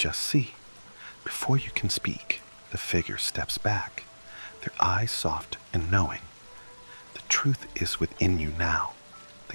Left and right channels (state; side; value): inverted; both; correlation -1.00